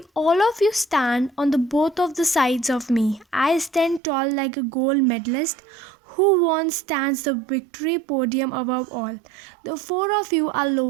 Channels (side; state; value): left; drops out; at 4.0 s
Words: all of you stand on the both of the sides of me, I stand tall like a gold medalist who won stands the victory podium above all. The 4 of you are